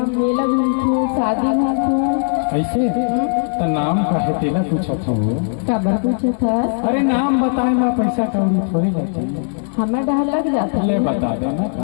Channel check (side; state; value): right; silent; digital silence